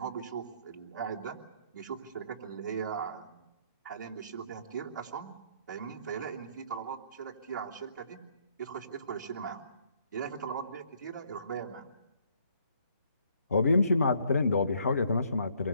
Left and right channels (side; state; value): both; inverted; correlation -0.67